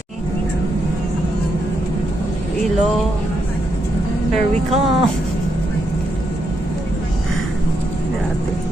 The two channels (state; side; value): normal; both; correlation 0.81